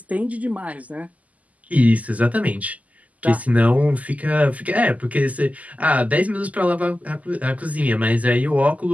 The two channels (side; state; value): left; late; 0.074 ms